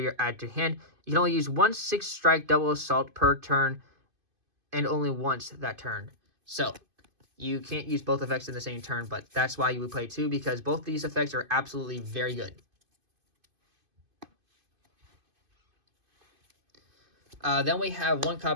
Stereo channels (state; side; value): late; left; 2.5 ms